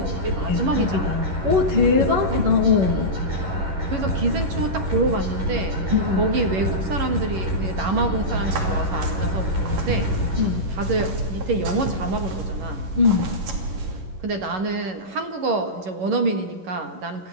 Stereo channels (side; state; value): left; late; 11 ms